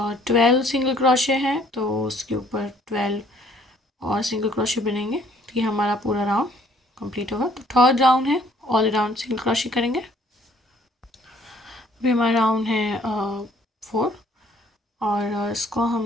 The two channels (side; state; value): both; normal; correlation 0.60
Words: 12 सिंगल क्रोशे हैं तो उसके ऊपर 12 और सिंगल क्रोशे बनेंगे। तो ये हमारा पूरा राउंड कंप्लीट होगा। तो थर्ड राउंड है, ऑल राउंड सिंगल क्रोशे करेंगे। अभी हमारा राउंड है 4, और इसको